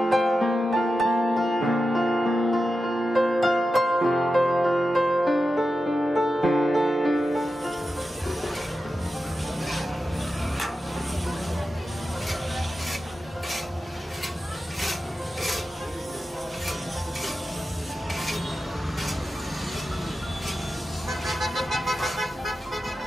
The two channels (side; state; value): both; normal; correlation 0.91